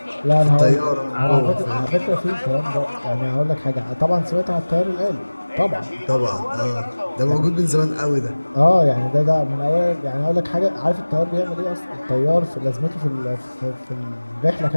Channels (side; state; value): both; inverted; correlation -1.00